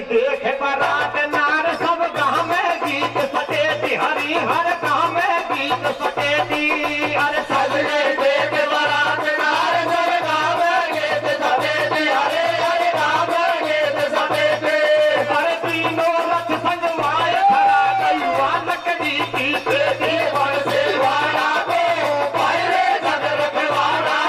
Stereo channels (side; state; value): both; identical; correlation 1.00